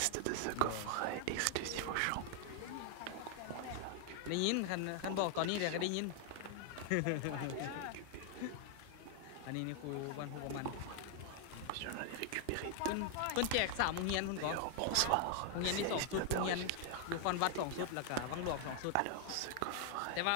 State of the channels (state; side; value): different; both; correlation 0.00